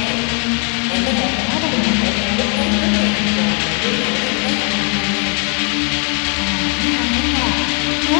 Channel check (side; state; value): right; quieter; 36.1 dB